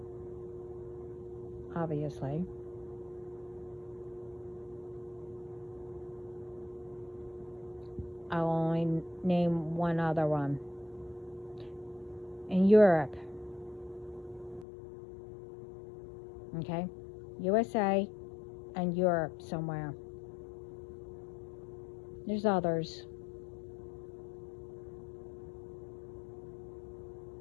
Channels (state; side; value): drops out; right; at 14.7 s